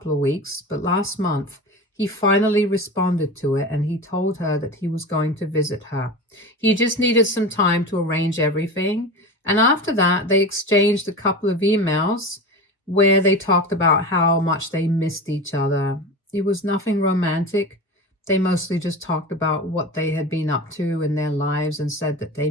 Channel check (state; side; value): normal; both; correlation 0.29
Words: of weeks, but last month he finally responded to it and he told her that he was going to visit her. He just needed some time to arrange everything. And after that, they exchanged a couple of emails where they talked about how much they missed each other. It was nothing romantic. They mostly just talked about what they had been up to in their lives and said that they